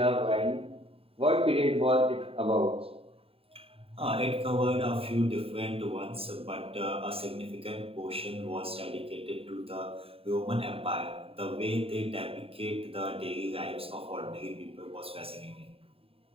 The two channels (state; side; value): late; left; 0.27 ms